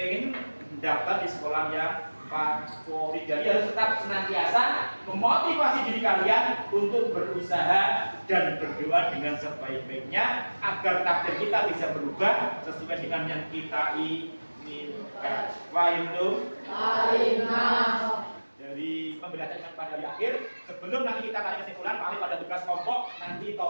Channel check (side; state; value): both; inverted; correlation -1.00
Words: mendaftar di sekolah yang favorit. Jadi harus tetap senantiasa memotivasi diri kalian untuk berusaha dan berdoa dengan sebaik-baiknya agar takdir kita bisa berubah sesuai dengan yang kita inginkan. Fahim tuh? Dari pembelajaran pada di akhir, sebelum nanti kita tarik kesimpulan, Pak pada tugas kelompok nanti